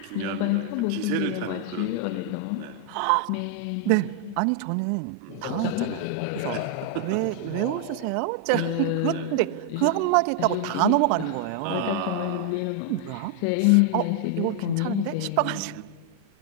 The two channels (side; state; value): both; different; correlation 0.00